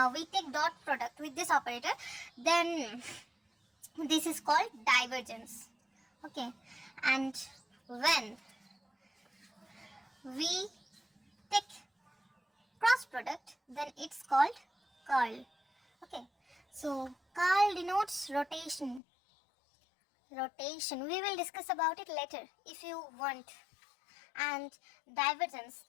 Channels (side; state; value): right; drops out; at 19.0 s